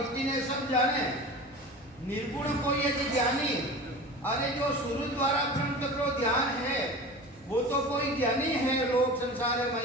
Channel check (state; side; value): normal; both; correlation 0.34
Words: ने सब जाने। निर्गुण को ये ज्ञानी। अरे जो सूर्य द्वारा ब्रह्म तत्व ध्यान है, वो तो कोई ज्ञानी है, लोग संसार